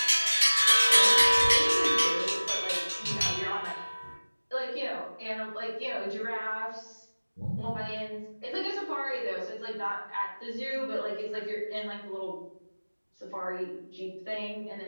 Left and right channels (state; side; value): inverted; both; correlation -1.00